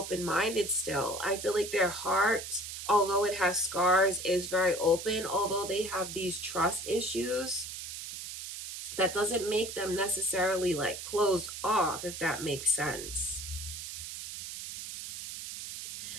still. I feel like their heart, although it has scars, is very open. Although they have these trust issues, that doesn't make them necessarily like closed off, if that makes sense.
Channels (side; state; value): right; noise; hiss, 8 dB below the sound